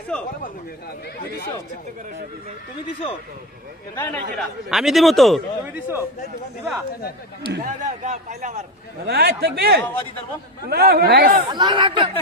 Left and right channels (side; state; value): both; normal; correlation 0.18